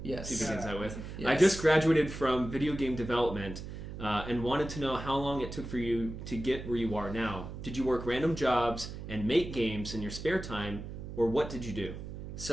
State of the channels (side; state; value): right; noise; hum, 9 dB below the sound